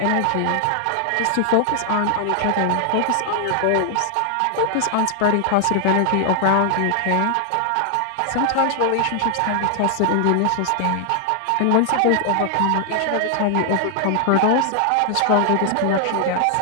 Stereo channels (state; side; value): different; both; correlation 0.00